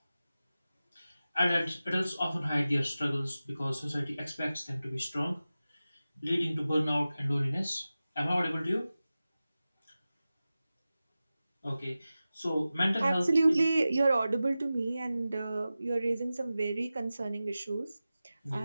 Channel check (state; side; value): inverted; both; correlation -0.95